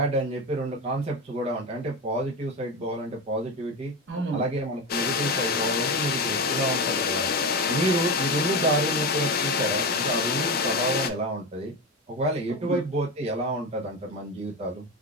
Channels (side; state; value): both; normal; correlation 0.19